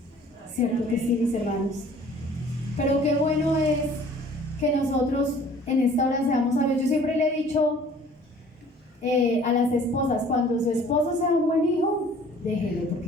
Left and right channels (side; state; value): both; normal; correlation 0.52